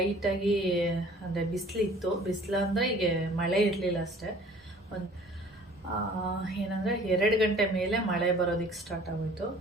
ಅಂದರೆ ಬಿಸಿಲಿತ್ತು. ಬಿಸಿಲು ಅಂದರೆ ಈಗ ಮಳೆ ಇರಲಿಲ್ಲ ಅಷ್ಟೇ. ಏನಂದರೆ 2 ಗಂಟೆ ಮೇಲೆ ಮಳೆ ಬರೋದಕ್ಕೆ ಸ್ಟಾರ್ಟ್ ಆಗೋಯಿತು.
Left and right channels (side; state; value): both; normal; correlation 0.51